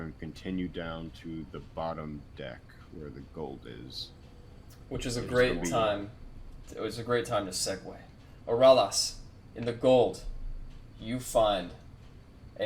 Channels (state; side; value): identical; both; correlation 1.00